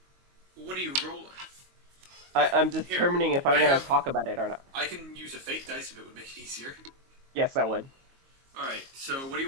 What are you rolling? I'm determining if I'm gonna talk about it or not. I can use a fake dice if it would make it easier. Yes, I would. Alright, so what do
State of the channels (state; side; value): late; left; 22 ms